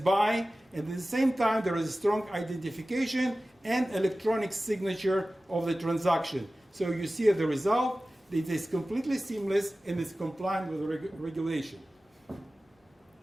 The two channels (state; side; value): normal; both; correlation 0.96